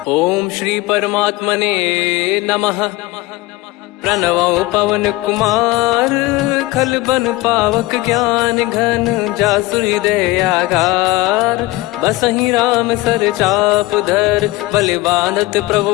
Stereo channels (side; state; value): right; quieter; 19.5 dB